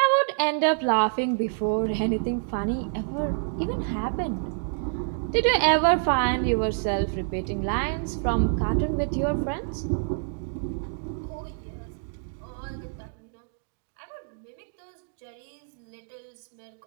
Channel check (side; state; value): left; silent; digital silence